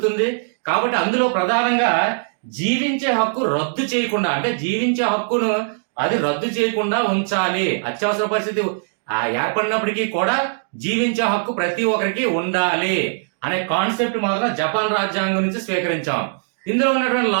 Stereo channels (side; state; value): left; silent; 65 dB below the other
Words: కాబట్టి అందులో ప్రధానంగా జీవించే హక్కు రద్దు చేయకుండా, అంటే జీవించే హక్కును అది రద్దు చేయకుండా ఉంచాలి. అత్యవసర పరిస్థితి ఏర్పడినప్పటికీ కూడా జీవించే హక్కు ప్రతి ఒక్కరికి ఉండాలి అనే కాన్సెప్ట్ మాత్రం జపాన్ రాజ్యాంగం నుంచి స్వీకరించాం. ఇందులో ఉన్నటువంటి